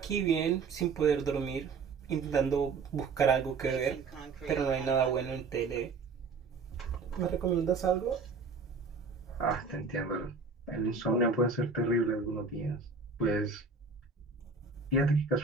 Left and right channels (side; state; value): left; quieter; 4.5 dB